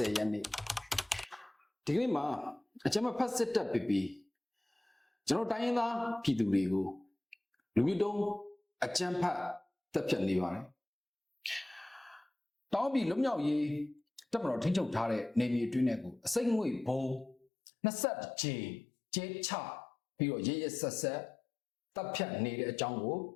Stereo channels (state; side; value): drops out; right; at 17.4 s